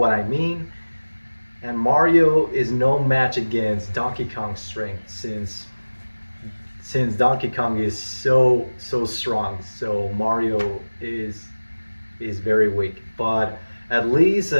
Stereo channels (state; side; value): inverted; both; correlation -1.00